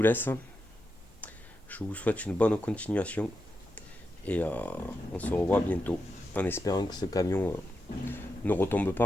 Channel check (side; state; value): both; normal; correlation 0.87